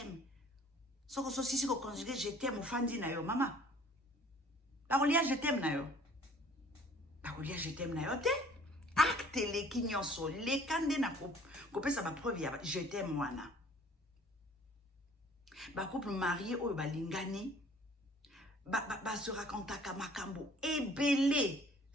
Soko so sisi ko conjuguer je t'aime ofandi na yo mama. Bakolia je t'aime na yo. Bakolia je t'aime na yo te. Acte leki nyonso lekande na kopesa ba preuve ya je t'aime wana. Ba couple marié oyo balingani ba se racontaka makambo ebele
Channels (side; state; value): both; normal; correlation 0.54